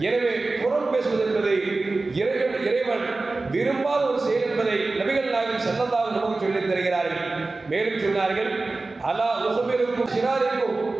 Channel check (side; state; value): left; quieter; 3.4 dB